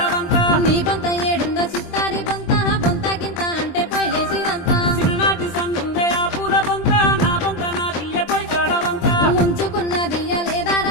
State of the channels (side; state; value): right; late; 23 ms